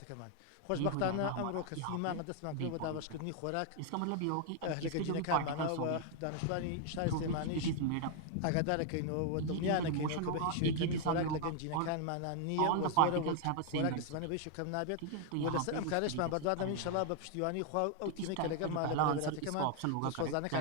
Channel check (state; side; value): different; both; correlation 0.00